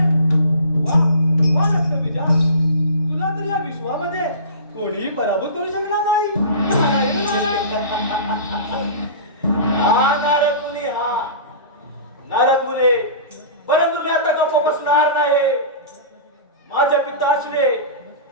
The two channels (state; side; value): inverted; both; correlation -0.35